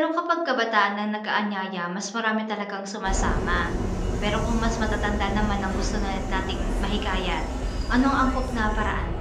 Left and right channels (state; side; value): identical; both; correlation 1.00